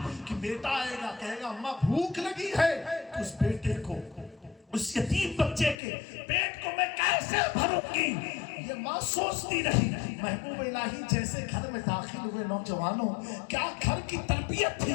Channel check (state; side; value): drops out; right; at 5.8 s